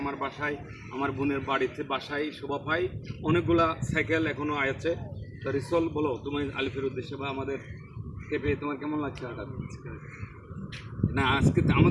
আমার বাসায়, আমার বোনের বাড়িতে বাসায় শোভা পায়, অনেকগুলা সাইকেল এখনও আছে। তো রিসল, বলো তুমি আলিফের উদ্দেশ্যে বা আমাদের কে পেয়ে তোমার কেমন লাগছে? হঠাৎ না, আজকে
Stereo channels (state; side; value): identical; both; correlation 1.00